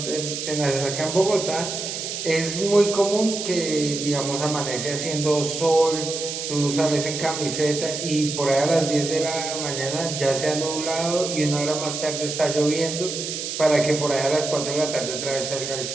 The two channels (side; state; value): right; noise; hiss, 5 dB below the sound